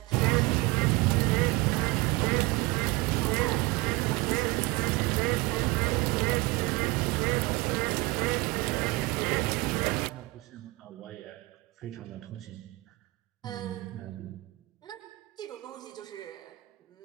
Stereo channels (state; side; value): quieter; left; 22.2 dB